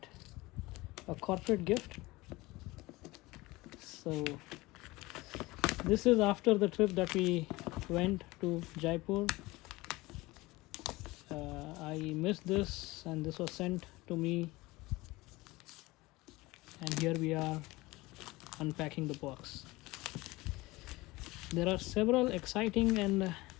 a corporate gift. So this is after the trip that we went to Jaipur. I missed this and this was sent to me, and here we are unpacking the box. There are several exciting and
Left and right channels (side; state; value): right; quieter; 21.0 dB